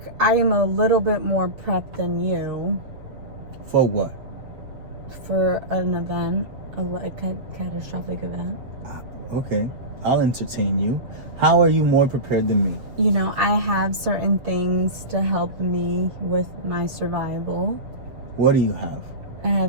I'm a little bit more prepped than you. For what? For an event, a catastrophic event. Okay, I'll entertain you. How are you more prepared than me? I have certain things to help me with my survival. What do you have? I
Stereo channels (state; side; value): late; left; 7.3 ms